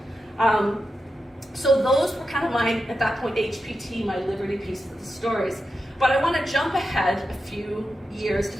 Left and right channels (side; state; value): both; normal; correlation 0.89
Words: So those were kind of at that point, HPT, my Liberty piece of the stories. But I want to jump ahead a few years to